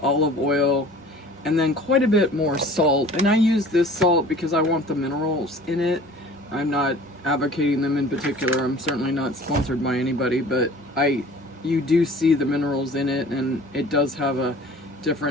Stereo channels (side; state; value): both; normal; correlation 0.46